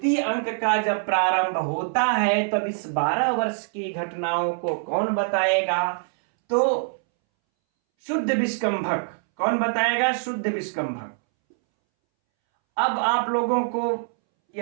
अंक का जब प्रारंभ होता है तब इस 12 वर्ष की घटनाओं को कौन बताएगा, तो शुद्ध विष्कंभक। कौन बताएगा, शुद्ध विष्कंभक। अब आप लोगों को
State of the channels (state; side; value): silent; left; 62 dB below the other